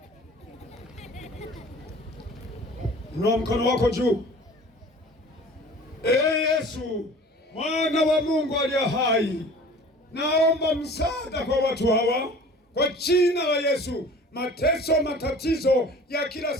Inua mkono wako juu. Yesu, Mwana wa Mungu aliye hai, naomba msaada kwa watu hawa kwa jina la Yesu. Mateso, matatizo ya kila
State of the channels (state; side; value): normal; both; correlation 0.45